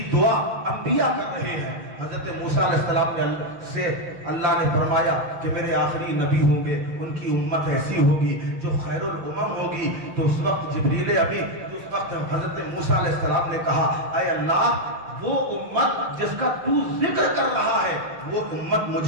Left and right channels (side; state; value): left; late; 5.8 ms